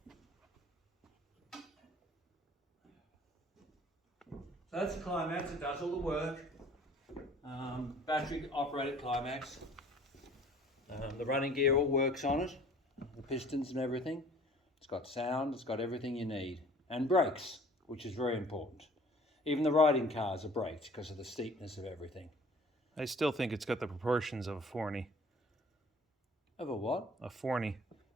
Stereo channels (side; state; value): both; normal; correlation 0.50